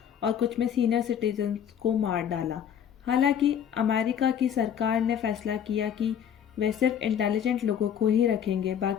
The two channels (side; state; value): right; quieter; 8.8 dB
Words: और कुछ में सीनियर सिटीजन्स को मार डाला। हालांकि अमेरिका की सरकार ने फैसला किया कि वे सिर्फ इंटेलिजेंट लोगों को ही रखेंगे,